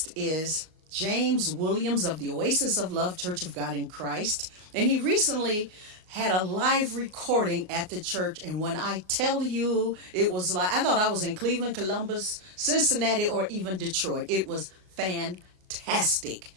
is James Williams of the Oasis of Love Church of God in Christ, and he recently had a live recording at the church, and when I tell you, it was like I thought I was in Cleveland, Columbus, Cincinnati, or even Detroit. It was fantastic.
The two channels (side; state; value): left; late; 38 ms